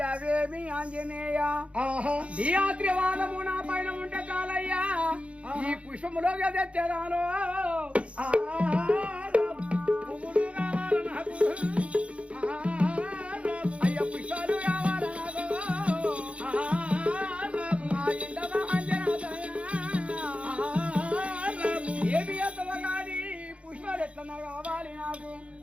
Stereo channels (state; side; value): late; left; 0.062 ms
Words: ఆంజనేయ ఆహా నీ ఆత్రివాదము నా పైన ఉంటే చాలయ్యా. ఈ పుష్పములో తెచ్చేదాను. అయ్య పుష్పాలు కావాలి నాకు. మా ఇంటవ ఆంజనేయ. ఏమి ఎత్తవ కానీ పుష్పాలు ఎట్లా కావాలి నాకు.